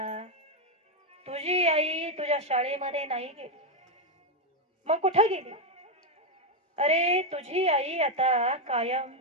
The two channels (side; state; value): both; normal; correlation 0.05